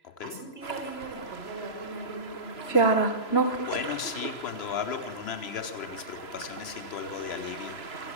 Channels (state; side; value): late; right; 3.0 ms